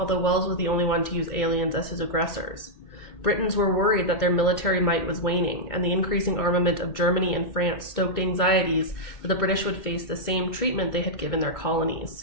Wells was the only one to use aliens as his aggressors. Britons were worried that their military might was waning, and the increasing armament of Germany and France stoked anxieties that the British would face the same treatment they had given their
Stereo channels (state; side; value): late; right; 2.2 ms